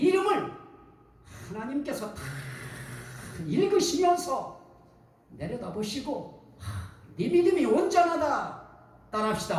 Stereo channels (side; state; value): both; identical; correlation 1.00